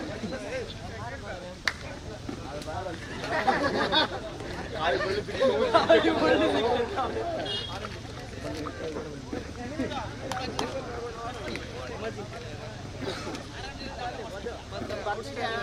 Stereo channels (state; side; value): identical; both; correlation 1.00